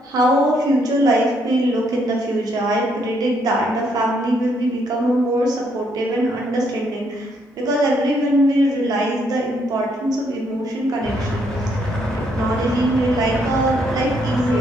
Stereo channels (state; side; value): normal; both; correlation 0.72